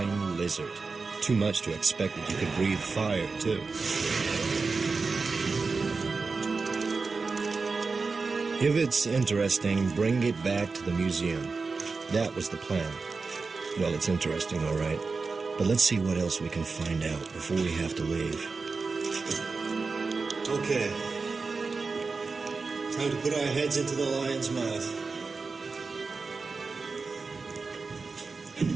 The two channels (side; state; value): left; quieter; 4.3 dB